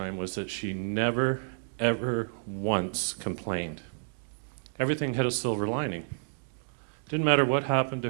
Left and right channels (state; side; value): silent; left; digital silence